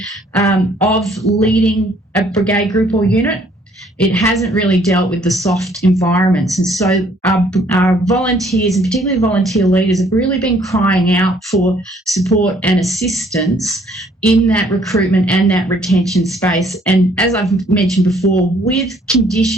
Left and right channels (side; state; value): both; normal; correlation 0.63